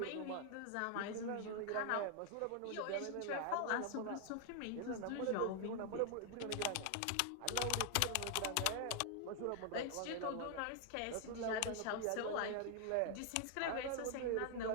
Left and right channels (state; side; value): different; both; correlation 0.00